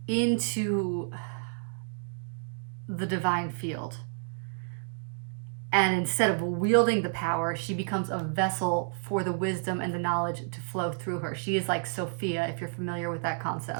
into the divine field. And instead of wielding the power, she becomes a vessel for the wisdom and the knowledge to flow through her. She is like Sophia, if you're familiar with that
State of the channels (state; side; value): silent; left; digital silence